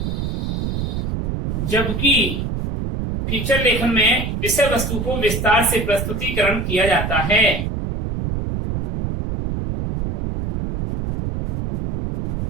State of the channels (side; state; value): right; noise; rumble, 2 dB below the sound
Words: फीचर लेखन में विषय वस्तु को विस्तार से प्रस्तुतिकरण किया जाता है।